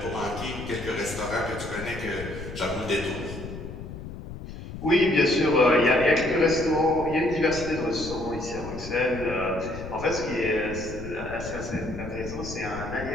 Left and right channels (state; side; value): noise; left; rumble, 10 dB below the sound